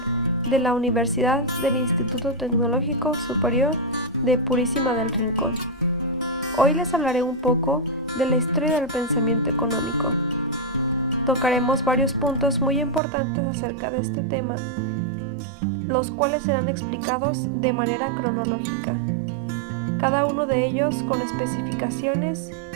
de la Universidad del Instituto Tecnológico Superior de Purísima del Rincón. Hoy les hablaré un poco de la historia del pensamiento económico. Tocaremos varios puntos muy importantes acerca de este tema, los cuales serán explicados de manera cronológica, cada uno de ellos con especificaciones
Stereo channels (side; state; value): left; drops out; at 13.0 s